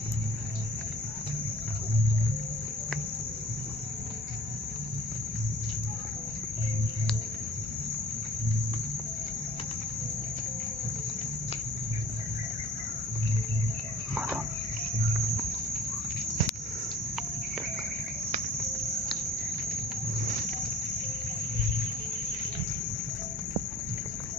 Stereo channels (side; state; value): both; normal; correlation 0.47